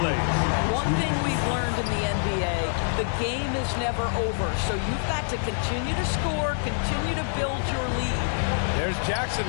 plays. One thing we've learned in the NBA, the game is never over. So you've got to continue to score, continue to build your lead. There's Jackson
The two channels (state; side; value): silent; right; digital silence